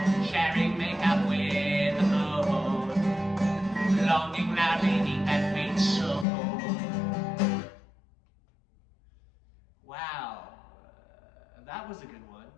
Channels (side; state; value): right; drops out; at 6.2 s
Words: Sharing makeup with the moon, longing loudly deep that faint soul. Wow, that was a good one.